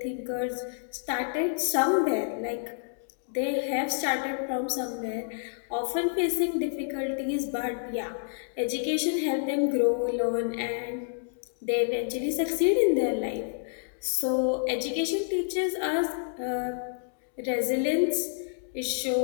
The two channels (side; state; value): right; silent; digital silence